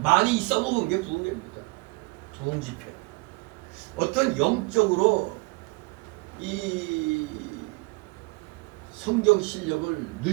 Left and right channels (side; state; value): left; quieter; 26.3 dB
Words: 많이 써먹은 게 부흥회입니다. 부흥 집회. 어떤 영적으로 이 성경 실력을